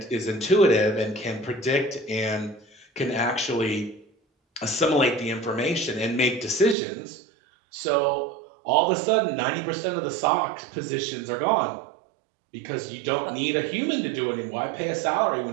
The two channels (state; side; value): drops out; left; at 6.8 s